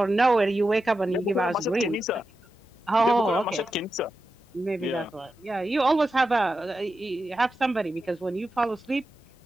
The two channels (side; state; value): both; normal; correlation 0.90